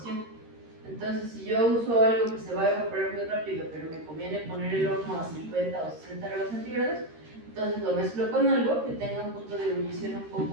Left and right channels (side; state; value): left; late; 13 ms